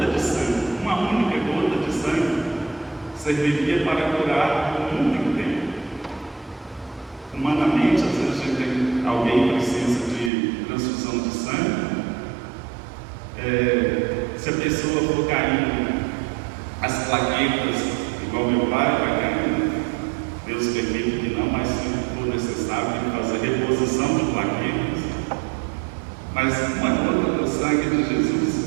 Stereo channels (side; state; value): left; drops out; at 10.3 s